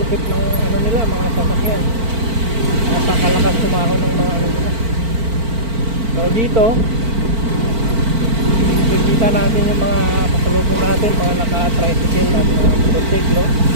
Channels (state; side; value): late; left; 4.5 ms